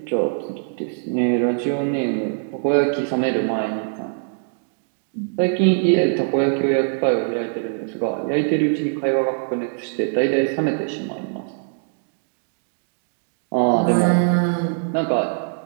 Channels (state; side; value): silent; left; digital silence